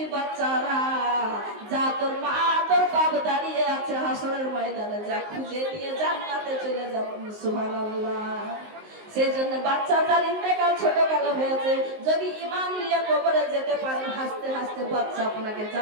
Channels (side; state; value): left; late; 19 ms